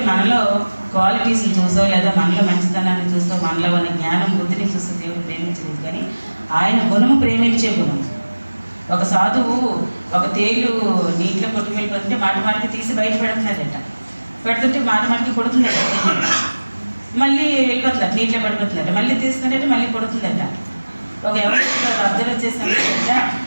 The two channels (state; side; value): inverted; both; correlation -1.00